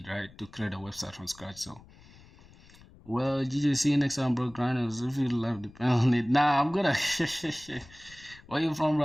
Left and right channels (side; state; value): left; noise; rumble, 23 dB below the sound